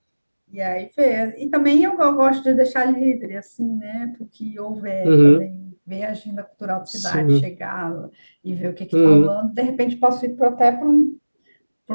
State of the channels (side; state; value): both; inverted; correlation -1.00